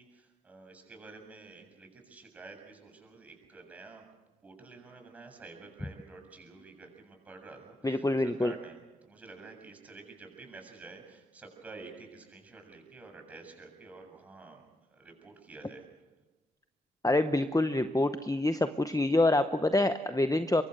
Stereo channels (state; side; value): normal; both; correlation 0.81